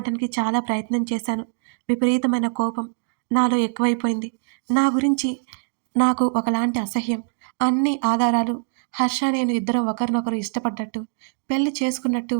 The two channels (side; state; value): left; silent; digital silence